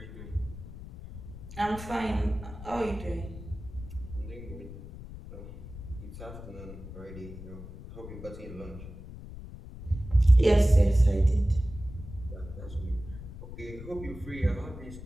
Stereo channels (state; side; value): noise; left; rumble, 13 dB below the sound